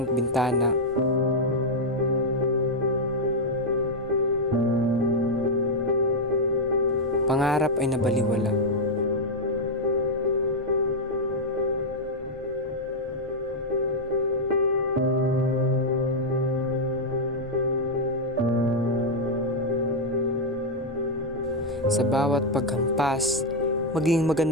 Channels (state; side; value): normal; both; correlation -0.02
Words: bintana, pangarap ay nabaliwala. Sa bawat paghampas, maging